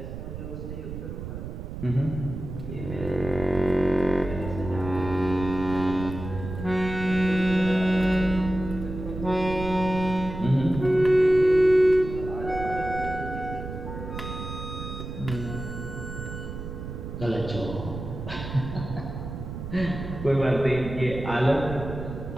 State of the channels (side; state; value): right; noise; rumble, 8 dB below the sound